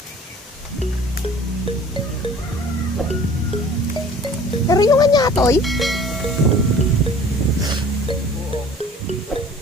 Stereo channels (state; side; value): normal; both; correlation 0.48